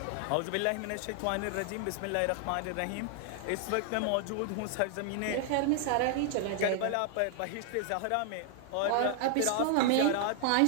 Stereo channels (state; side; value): different; both; correlation 0.00